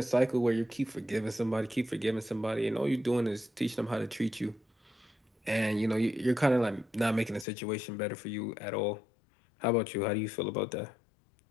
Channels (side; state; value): right; drops out; at 7.5 s